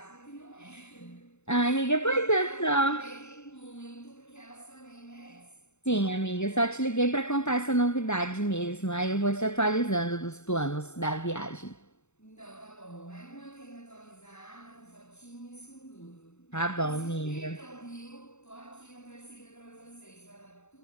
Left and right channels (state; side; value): late; right; 0.82 ms